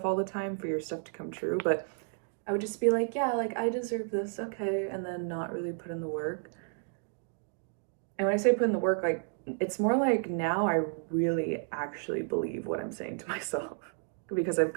all the time for your stuff to come true, but I would just be like, yeah, like I deserve this, okay, and then not really put in the work. And when I say put in the work, like it's more like now I really actually believe what I'm saying to myself because I've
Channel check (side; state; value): left; silent; 56 dB below the other